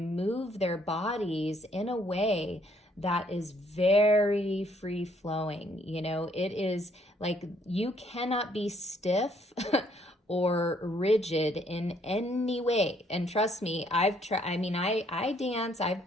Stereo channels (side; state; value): both; normal; correlation 0.66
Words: move their bodies in a way that is very free flowing. You know, it is like you cannot be stiff or rigid in any way. And trust me, I've tried, I mean, I dance, I've